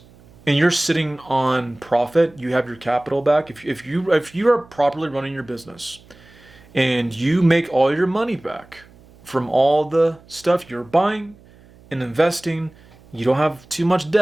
and you're sitting on profit, you have your capital back. If you are properly running your business and you make all your money back from all the stuff you're buying and investing, you don't have too much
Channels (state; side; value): noise; right; hum, 26 dB below the sound